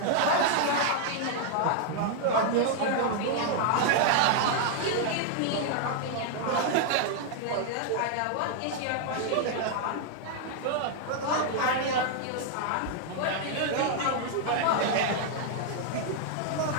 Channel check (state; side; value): different; both; correlation 0.00